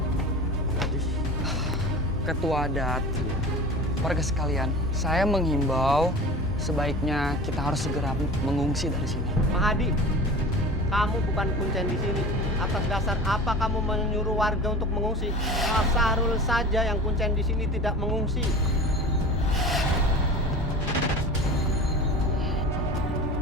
Ketua adat, warga sekalian, saya menghimbau sebaiknya kita harus segera mengungsi dari sini. Mahadi, kamu bukan kuncen di sini. Atas dasar apa kamu menyuruh warga untuk mengungsi? Pak Sahrul saja yang kuncen di sini tidak mengungsi.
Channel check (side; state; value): both; normal; correlation 0.36